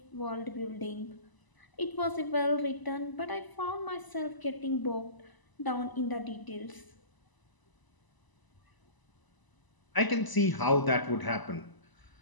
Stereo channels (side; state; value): right; late; 1.0 ms